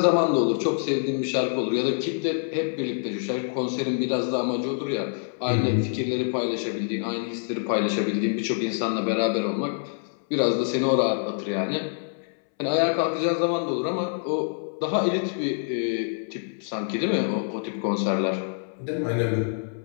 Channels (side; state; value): right; silent; 61 dB below the other